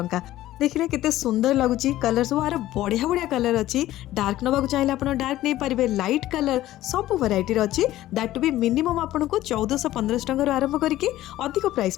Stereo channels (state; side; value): quieter; right; 14.8 dB